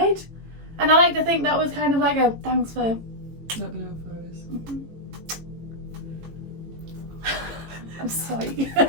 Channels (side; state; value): left; late; 18 ms